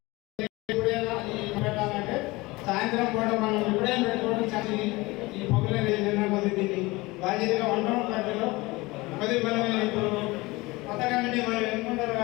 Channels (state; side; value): quieter; right; 22.0 dB